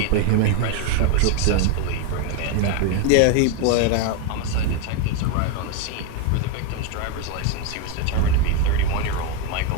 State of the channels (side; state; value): both; different; correlation 0.01